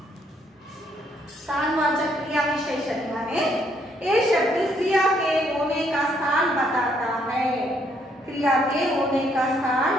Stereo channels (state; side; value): normal; both; correlation 0.70